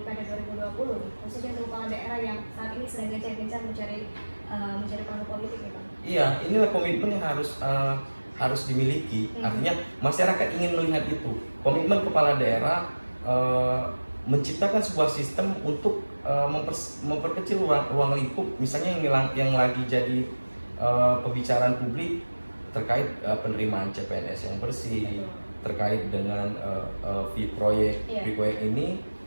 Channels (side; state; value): both; inverted; correlation -1.00